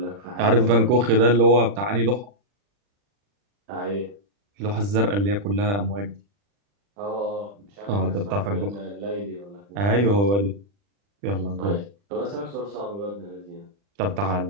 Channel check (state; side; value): late; left; 40 ms